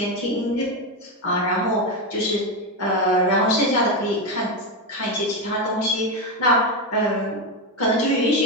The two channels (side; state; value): both; normal; correlation 0.11